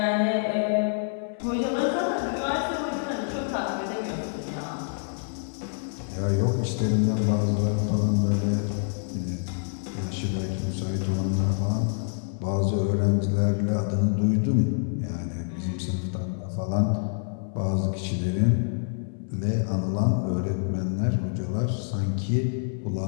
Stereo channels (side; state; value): right; silent; 60 dB below the other